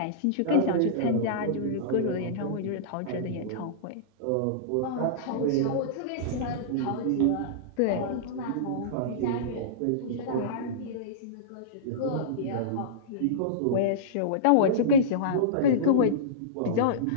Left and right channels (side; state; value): both; different; correlation -0.04